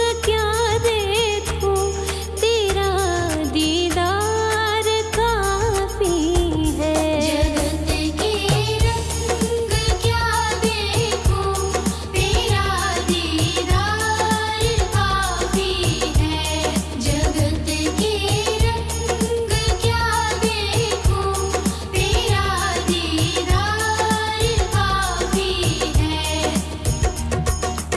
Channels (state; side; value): identical; both; correlation 1.00